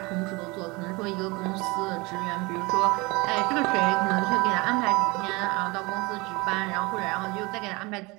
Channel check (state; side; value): quieter; left; 25.0 dB